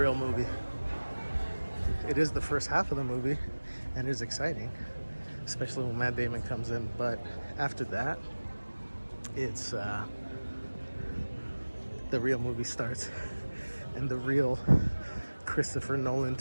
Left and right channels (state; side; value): inverted; both; correlation -1.00